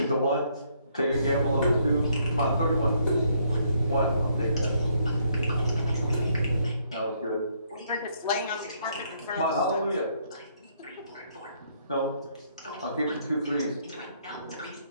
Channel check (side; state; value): both; inverted; correlation -0.70